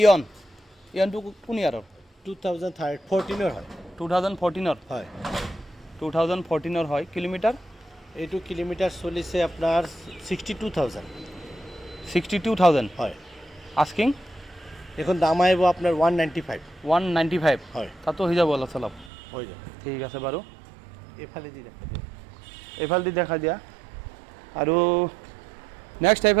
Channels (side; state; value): left; drops out; at 19.1 s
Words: কোন ইয়াৰৰ 2014 হয় 2014 হয় 2014 হয় কিলোমিটাৰ এইটো কিলোমিটাৰ চলিছে আপোনাৰ 62,000 হয় আস্কিং এখন দাম আহিব আপোনাৰ 195 হয় তাতো হৈ যাব অলপ চলপ হৈ যাব ঠিক আছে বাৰু এইফালে দি দেখা এইফালেদি দেখা দিয়া আৰু নেক্সট